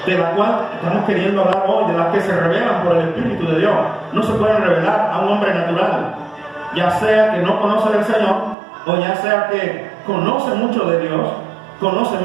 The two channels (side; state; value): left; drops out; at 8.6 s